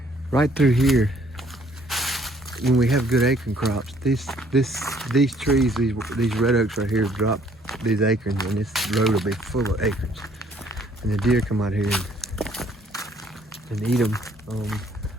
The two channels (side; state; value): both; normal; correlation 0.62